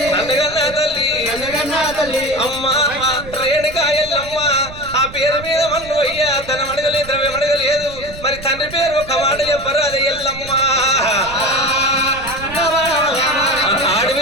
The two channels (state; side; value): noise; right; rumble, 14 dB below the sound